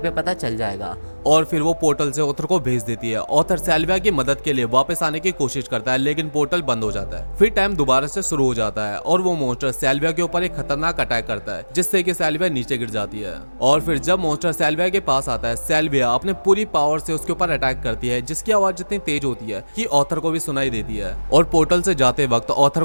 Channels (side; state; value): both; inverted; correlation -1.00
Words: पता चल जाएगा। और फिर वो पोर्टल से ऑथर को भेज देती है। ऑथर सेल्विया की मदद के लिए वापस आने की कोशिश करता है लेकिन पोर्टल बंद हो जाता है। फिर टाइम दोबारा से शुरू हो जाता है और वो मॉन्स्टर सेल्विया के ऊपर एक खतरनाक अटैक करता है जिससे कि सेल्विया नीचे गिर जाती है। और फिर जब मॉन्स्टर सेल्विया के पास आता है सेल्विया अपने पूरी पावर से उसके ऊपर अटैक करती है जिसकी आवाज इतनी तेज होती है कि ऑथर को भी सुनाई देती है। और पोर्टल से जाते वक्त ऑथर